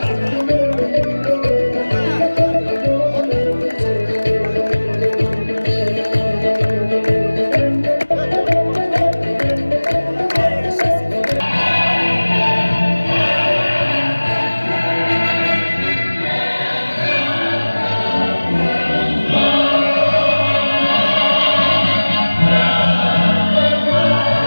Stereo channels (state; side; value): inverted; both; correlation -1.00